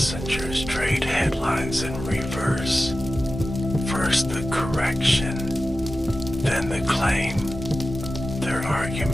trade headlines in reverse. First the correction, then the claim. Their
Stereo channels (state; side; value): normal; both; correlation 0.94